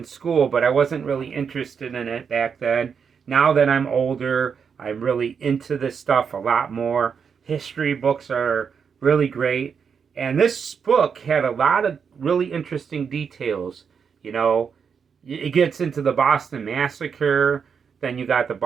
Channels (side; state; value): left; quieter; 6.5 dB